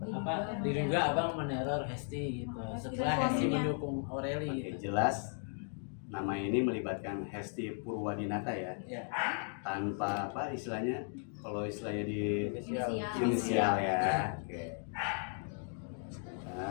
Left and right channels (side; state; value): right; silent; 54 dB below the other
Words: Diduga abang meneror Hesti gitu. Setelah Hesti mendukung Aureli Oke, gitu. jelas nama ini melibatkan Hesti Purwadinata ya. Ya. Tanpa apa istilahnya? Kalau istilahnya di Inisial. inisial ya. Oke.